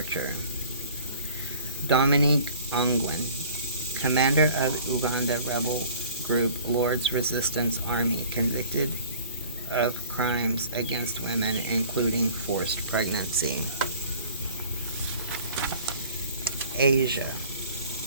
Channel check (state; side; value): inverted; both; correlation -0.46